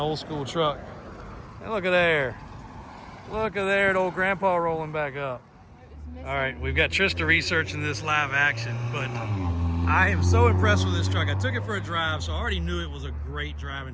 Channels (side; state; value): both; identical; correlation 1.00